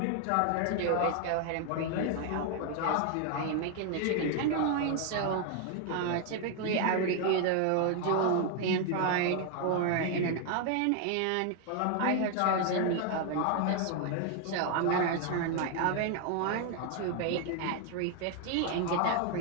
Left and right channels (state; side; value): different; both; correlation 0.00